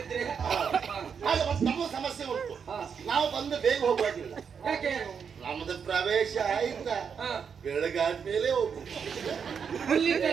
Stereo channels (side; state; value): left; quieter; 6.7 dB